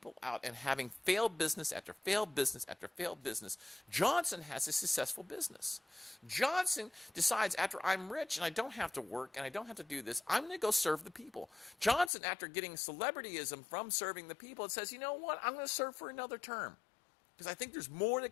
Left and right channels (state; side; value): drops out; right; at 12.1 s